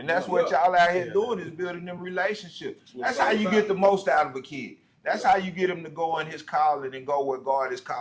that's what y'all out here doing is building them relationships. That's how you get the most out of a kid. That's how you get him to go in his calling and go where God is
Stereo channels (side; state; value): both; identical; correlation 1.00